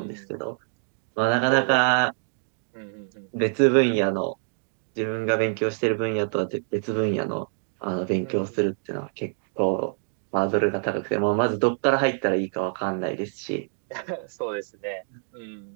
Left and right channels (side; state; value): left; silent; digital silence